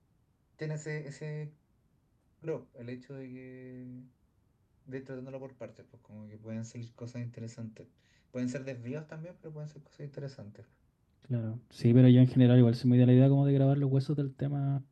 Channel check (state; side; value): identical; both; correlation 1.00